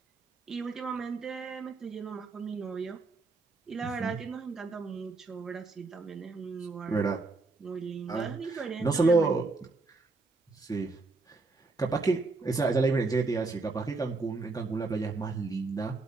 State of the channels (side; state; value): left; quieter; 3.7 dB